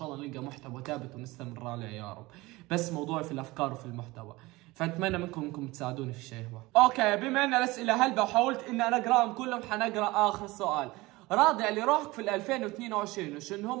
الله نلقى محتوى ثابت ونستمر عليه يا رب. بس موضوعي في الافكار وفي المحتوى، فاتمنى منكم انكم تساعدوني في الشيء هو. اوكي، بما ان الاسئله هلبا وحاولت اني انا اقراهم كلهم، حنقرا اخر سؤال. راضي على روحك في 2022 وشنو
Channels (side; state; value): left; quieter; 21.0 dB